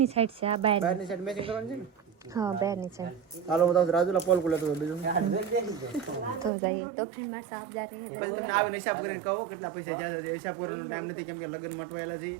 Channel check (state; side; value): drops out; left; at 6.5 s